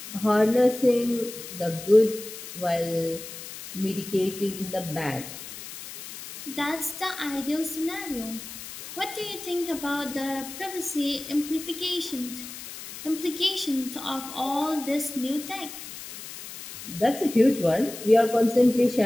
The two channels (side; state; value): left; noise; hiss, 12 dB below the sound